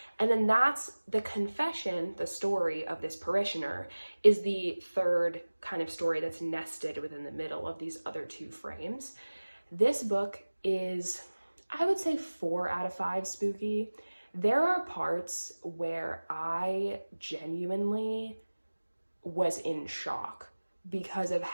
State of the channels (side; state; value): both; inverted; correlation -1.00